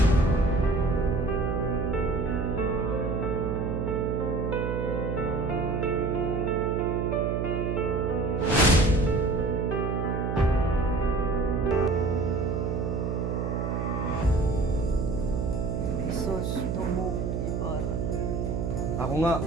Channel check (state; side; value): noise; right; hum, 1 dB below the sound